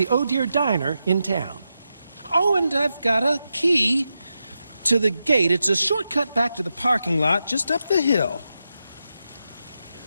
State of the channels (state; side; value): inverted; both; correlation -0.88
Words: Oh Dear Diner in town. Oh, and I've got a key to the gate. It's a shortcut back to the parking lot just up the hill.